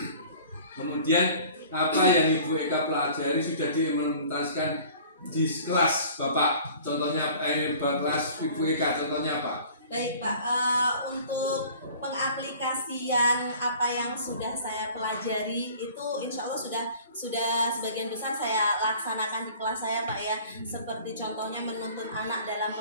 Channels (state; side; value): inverted; both; correlation -0.47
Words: Kemudian apa yang Ibu Eka pelajari sudah diimplementasikan di kelas Bapak. Contohnya kelas Ibu Eka, contohnya apa? Baik Pak, untuk pengaplikasian apa yang sudah saya pelajari itu insya Allah sudah sebagian besar saya laksanakan di kelas saya Pak ya. Seperti contohnya menuntun anak dalam